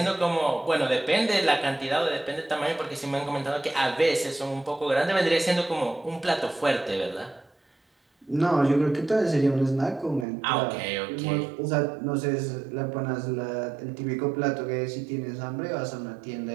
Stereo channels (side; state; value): left; drops out; at 10.2 s